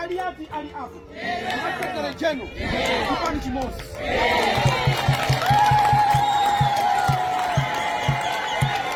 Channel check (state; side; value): identical; both; correlation 1.00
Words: ali apo. Sekretary General chipani chimosi.